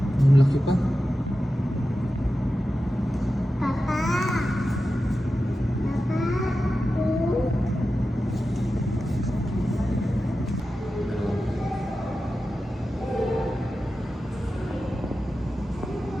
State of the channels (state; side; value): normal; both; correlation 0.93